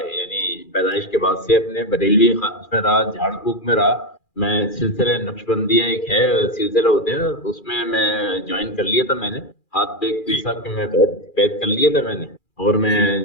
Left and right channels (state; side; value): late; right; 2.4 ms